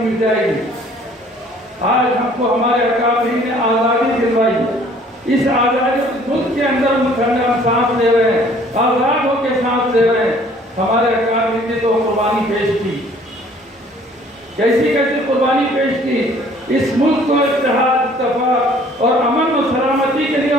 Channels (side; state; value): both; normal; correlation 0.56